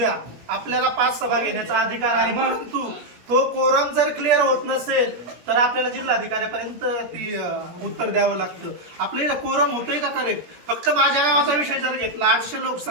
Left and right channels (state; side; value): late; left; 17 ms